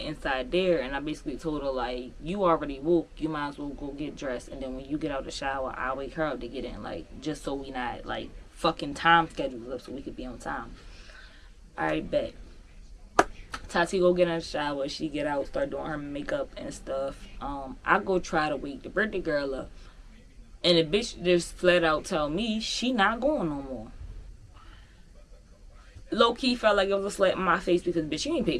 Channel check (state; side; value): identical; both; correlation 1.00